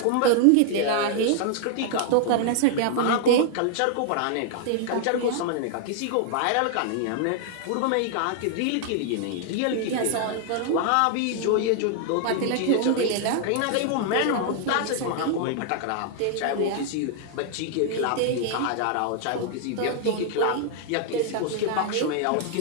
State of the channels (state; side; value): different; both; correlation 0.00